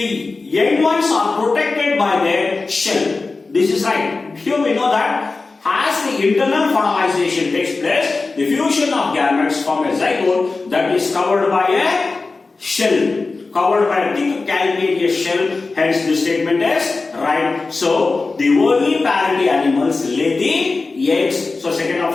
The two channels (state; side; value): quieter; right; 3.8 dB